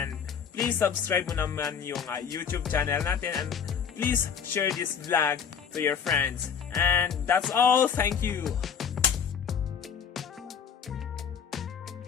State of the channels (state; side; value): quieter; right; 7.2 dB